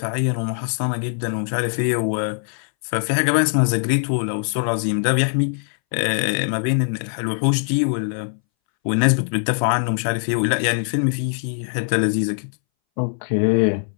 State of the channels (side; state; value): right; silent; 62 dB below the other